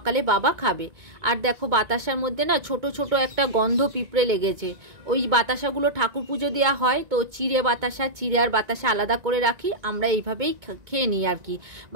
বাবা খাবে। আর দেখো বাতাসার মধ্যে না ছোট ছোট একটা গন্ধ পিঁপড়ে লেগেছে। ওই বাতাসাগুলো ঠাকুর পুজো দেওয়া হয়, তো চিড়ে বাতাসা, চিড়ে আর বাতাসা আলাদা করে রাখি, আমরা এইভাবেই খেয়ে নিই আর কি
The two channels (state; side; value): late; left; 2.2 ms